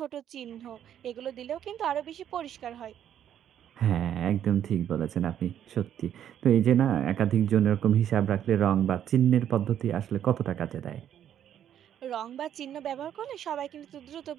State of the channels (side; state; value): left; quieter; 10.1 dB